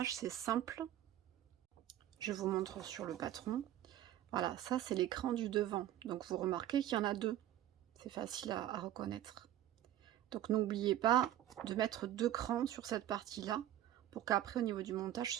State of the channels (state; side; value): quieter; left; 12.5 dB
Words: c'est simple. Je vous montre sur le patron. Voilà, ça c'est l'écran du devant. Donc vous remarquez qu'il y en a deux. C'est facile à reconnaître. Donc n'oubliez pas de mettre deux crans sur cette partie-là pour qu'après au niveau du montage